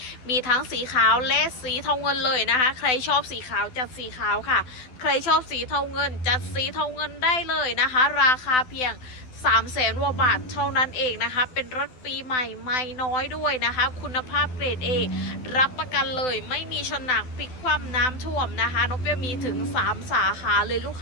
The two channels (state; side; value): late; right; 12 ms